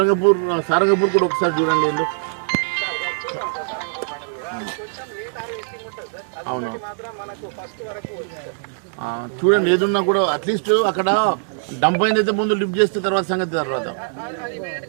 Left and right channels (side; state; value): left; silent; 65 dB below the other